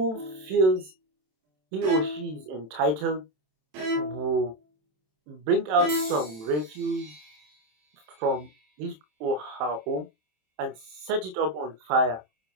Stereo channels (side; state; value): left; late; 27 ms